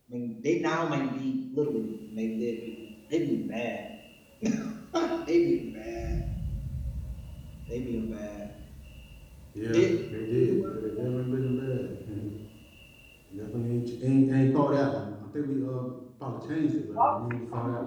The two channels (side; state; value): both; identical; correlation 1.00